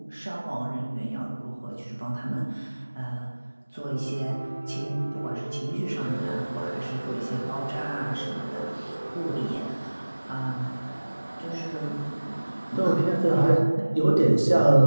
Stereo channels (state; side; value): inverted; both; correlation -1.00